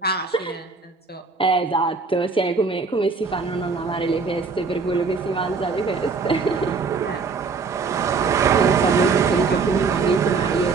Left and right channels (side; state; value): left; quieter; 4.6 dB